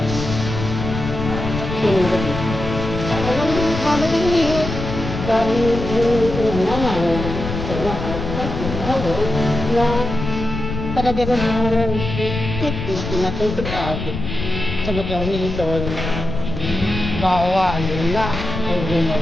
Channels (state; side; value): noise; left; rumble, 6 dB below the sound